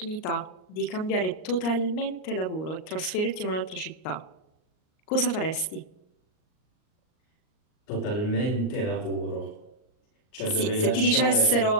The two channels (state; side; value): late; right; 38 ms